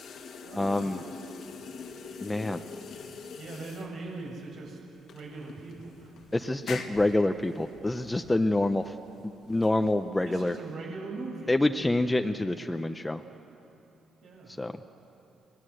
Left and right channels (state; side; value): normal; both; correlation 0.96